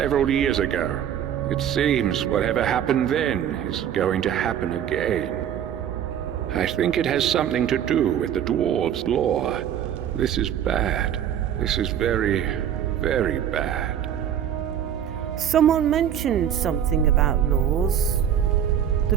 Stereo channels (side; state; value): left; quieter; 9.5 dB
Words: years ago. It seems whatever happened then is going to happen again. I think it has something to do with the dwarves' law. This is bad. This is very, very bad. Someone mentioned something about laws. The